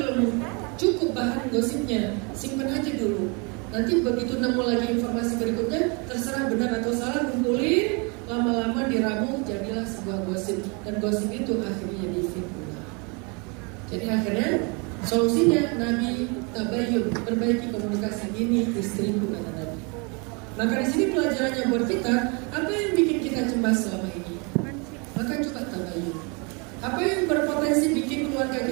cukup bahan gosipnya, simpan aja dulu. Nanti begitu nemu lagi informasi berikutnya, terserah benar atau salah, kumpulin, lama-lama diramu, jadilah sebuah gosip. Dan gosip itu akhirnya jadi fitnah. Jadi akhirnya solusinya Nabi tabayun, perbaiki komunikasi. Ini istriku kata Nabi. Maka di sini pelajarannya buat kita, apa yang bikin kita cemas selama ini? Maka coba tabayun. Apa yang berpotensi bikin keluarga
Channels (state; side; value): quieter; left; 32.3 dB